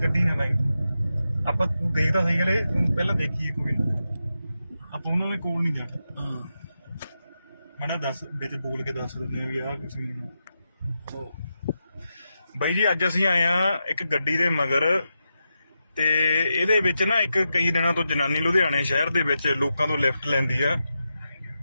ਨਾ ਲਾਈ ਆਪਾਂ, ਤੂੰ ਗਈ ਤਾਂ ਸਹੀ ਗਲੇ ਪਹਿਲਾਂ ਦੇਖੀਏ ਕੋਈ ਨਾ, ਆਪਾਂ ਉਹਨਾਂ ਦੇ ਕੋਲ ਨਹੀਂ ਜਾਣਾ। ਮੈਂ ਦੱਸ ਵਿੱਚ ਬੋਲ ਕੇ ਦੱਸ ਦਿੰਦੇ ਆ ਵੀ ਆਹ ਕੁਛ ਨਹੀਂ। ਬਾਈ ਜੀ ਅੱਜ ਅਸੀਂ ਆਏ ਆ ਇੱਕ ਗੱਡੀ ਦੇ ਮਗਰ, ਤੇ ਇਹਦੇ ਵਿੱਚ ਨਾ ਇੱਕ ਕਈ ਦਿਨਾਂ ਤੋਂ ਜਨਾਨੀ ਲੁਧਿਆਣੇ ਸ਼ਹਿਰ ਦੇ ਵਿੱਚ ਲੋਕਾਂ ਤੋਂ ਲਿਫਟ ਲੈਂਦੀ ਆ,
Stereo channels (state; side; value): inverted; both; correlation -0.88